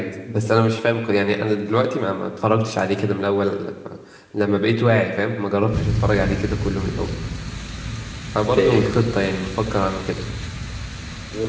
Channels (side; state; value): both; identical; correlation 1.00